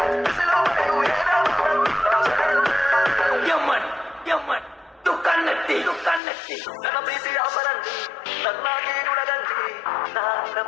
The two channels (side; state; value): right; drops out; at 6.2 s